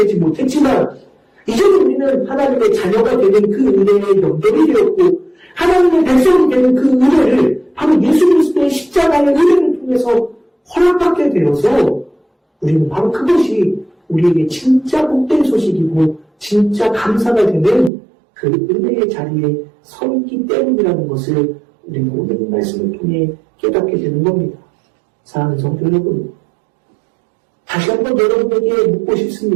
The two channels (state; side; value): drops out; left; at 17.9 s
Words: 못했지만 이제는 우리는 하나님의 자녀가 되는 그 은혜에 연결이 되었고 하나님의 백성이 되는 그 은혜를 바로 예수 그리스도의 십자가의 은혜를 통해서 허락받게 되어서 우리는 바로 그것이 우리에게 진짜 복된 소식이고 진짜 감사가 되는 그 은혜의 자리에 서 있기 때문이라는 것을 우리는 오늘 이 말씀을 통해 깨닫게 되는 겁니다. 사랑하는 성도 여러분, 다시 한번 여러분에게 묻고